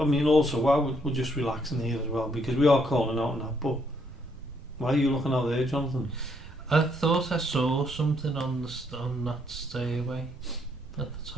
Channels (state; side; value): noise; right; rumble, 19 dB below the sound